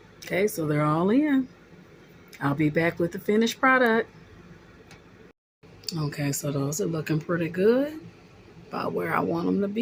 Okay, so they're all in. I'll be back with the finished product. Okay, so those are looking pretty good, about where I want them to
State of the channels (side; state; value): both; identical; correlation 1.00